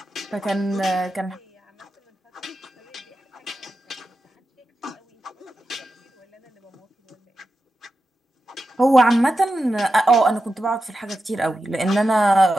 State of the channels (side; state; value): both; normal; correlation 0.90